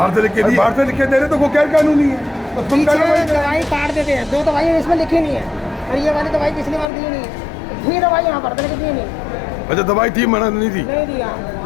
से लिख के बाहर से लिख के दे रहे तो वो गैर कानूनी है। तो तुम दवाई काट देते हैं, 2 दवाई इसमें लिखी नहीं है और ये वाली दवाई पिछली बार दी नहीं है। थी दवाई यहाँ पर लेकिन दी नहीं। अच्छा दवाई थी, मना नहीं थी, नहीं दिया।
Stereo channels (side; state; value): right; drops out; at 6.9 s